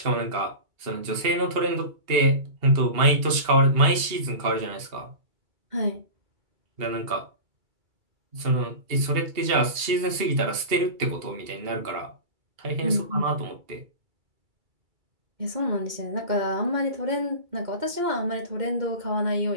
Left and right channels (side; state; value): left; late; 2.3 ms